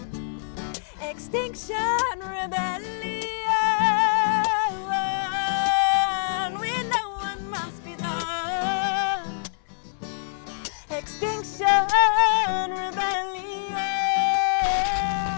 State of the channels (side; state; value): right; silent; 60 dB below the other